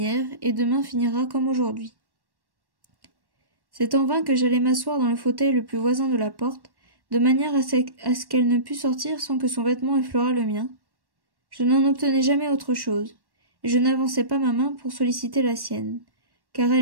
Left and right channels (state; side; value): late; left; 1.1 ms